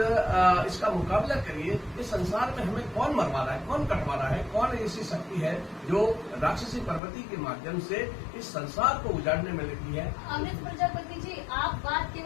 मुकाबला करिए। इस संसार में हमें कौन मरवा रहा है, कौन कटवा रहा है, कौन ऐसी शक्ति है जो राक्षसी प्रवृत्ति के माध्यम से इस संसार को उजाड़ने में लगी है? अमृत प्रजापति जी, आप बात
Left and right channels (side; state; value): right; drops out; at 7.0 s